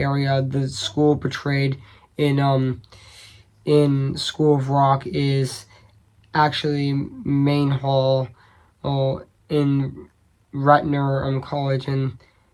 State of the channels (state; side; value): identical; both; correlation 1.00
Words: The school portrayed in School of Rock is actually Main Hall, in Ratner College in